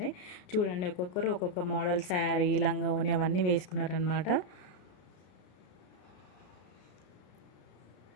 చూడండి ఒక్కొక్కరు ఒక్కొక్క మోడల్ శారీ, లంగా ఓని అవన్నీ వేసుకున్నారనమాట.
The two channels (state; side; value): late; right; 33 ms